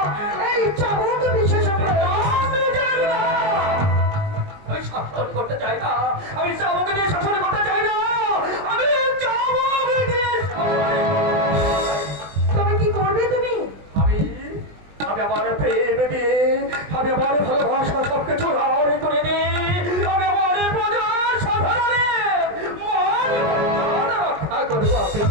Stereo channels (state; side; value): late; left; 20 ms